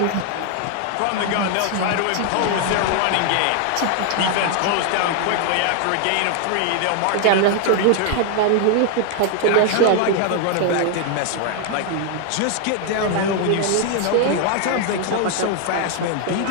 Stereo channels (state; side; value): different; both; correlation 0.00